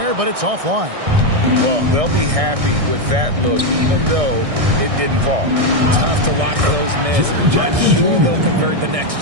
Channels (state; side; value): late; left; 1.6 ms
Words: but it's offline. Well, they'll be happy with that look, even though it didn't fall. Tough to watch those miss. I'm sure they'll convert the next